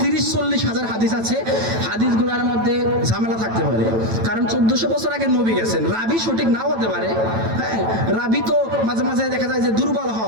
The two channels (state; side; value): late; left; 9.1 ms